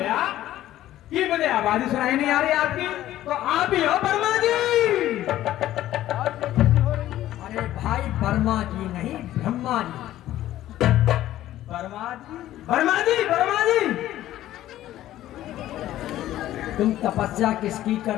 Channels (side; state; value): right; quieter; 13.7 dB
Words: कि मुझे आवाज ही सुनाई नहीं आ रही आपकी। तो आप ही हो वर्मा जी? अरे भाई, वर्मा जी नहीं, ब्रह्मा जी। वर्मा जी? वर्मा जी, वर्मा जी। तुम तपस्या किसकी